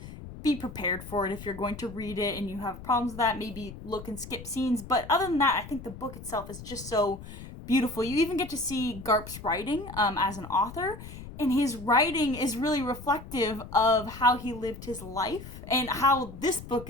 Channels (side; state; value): left; noise; rumble, 13 dB below the sound